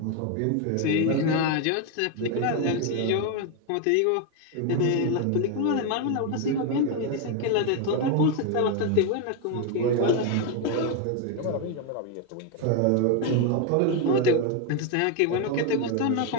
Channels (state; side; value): different; both; correlation 0.01